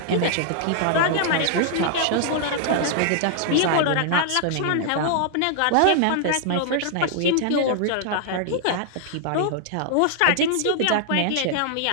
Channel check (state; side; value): different; both; correlation -0.01